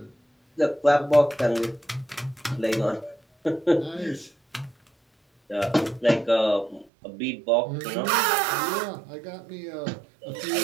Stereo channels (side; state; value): left; drops out; at 6.9 s